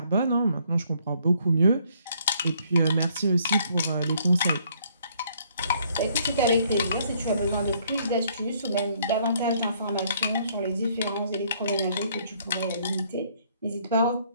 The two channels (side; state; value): both; inverted; correlation -0.65